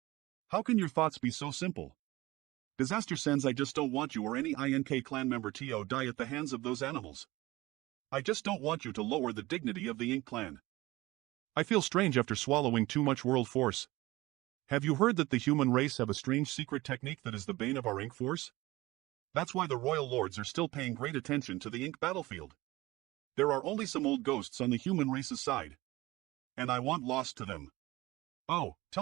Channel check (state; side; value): quieter; left; 19.4 dB